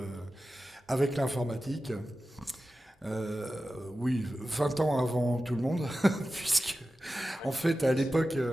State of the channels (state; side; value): normal; both; correlation 0.94